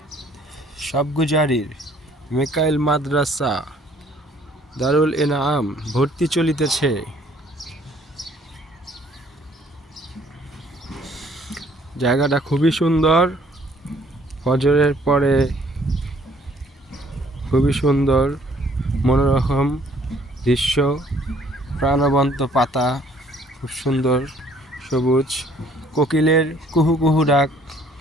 সবগুজারির মিকাইল মাদ্রাসা দারুল ইনাম ভর্তি চলিতেছে। জায়গাটা খুবই সুন্দর, ফজরের পরে খুবই সুন্দর মনোরম দৃশ্য, প্রাণবন্ত পাতা, খুব সুন্দর সবুজ, কোকিলের কুহু কুহু ডাক।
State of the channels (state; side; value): normal; both; correlation 0.60